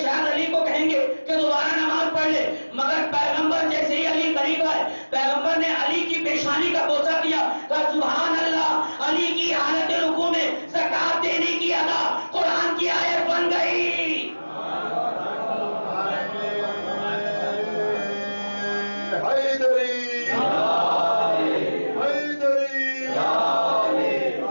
علی کو کہیں گے کہ دوبارہ نماز پڑھ لے, مگر پیغمبر جیسے ہی علی قریب آئے, پیغمبر نے علی کی پیشانی کا بوسہ دیا, کہا سبحان اللہ, علی کی حالت رکوع میں زکات دینے کی ادا قرآن کی آیت بن گئی. حیدری حیدری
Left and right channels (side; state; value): both; inverted; correlation -1.00